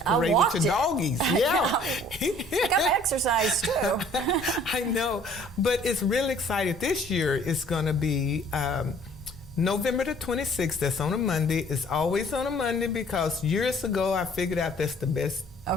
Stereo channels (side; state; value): both; normal; correlation 0.55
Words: I parade with your doggies. Yeah. I got to exercise too. I know. But it's really exciting. This year it's going to be November the 26th. That's on a Monday. It's always on a Monday because years ago I figured out that's the best